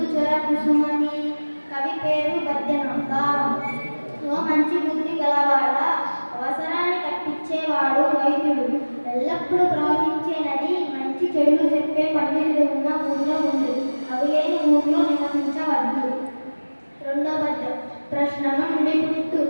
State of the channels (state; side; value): inverted; both; correlation -1.00